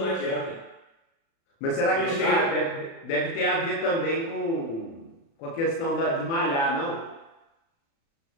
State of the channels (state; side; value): late; right; 36 ms